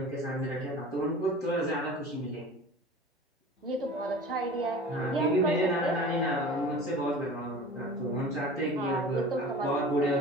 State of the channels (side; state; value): both; normal; correlation 0.39